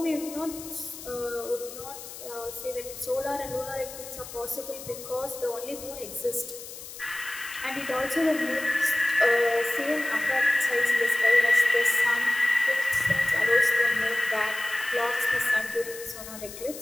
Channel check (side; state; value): left; noise; hiss, 13 dB below the sound